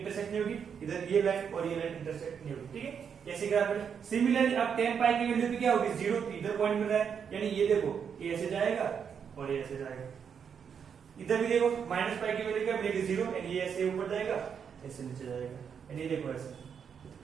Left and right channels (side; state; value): left; quieter; 7.2 dB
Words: नहीं होगी, इधर ये लाइन और ये लाइन इंटरसेक्ट नहीं होगी। ठीक है, ऐसे ग्राफ में सिमिलरली अब tan पाई की वैल्यू भी क्या होगी 0, इधर पॉइंट मिल रहा है, यानी ये देखो ये ऐसे जाएगा और ये ऐसे जाएगा। इधर भी देखो माइनस पाई की वैल्यू क्या मिलेगी 0, यानी ये ऐसे ऊपर जाएगा ऐसे नीचे जाएगा, यानी ये देखो ऐसे।